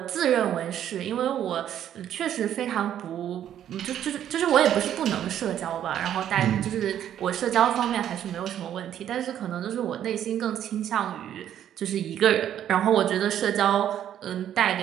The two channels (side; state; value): left; quieter; 10.5 dB